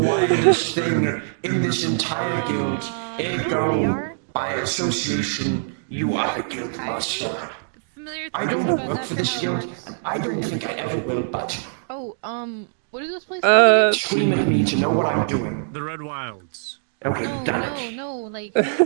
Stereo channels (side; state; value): left; silent; digital silence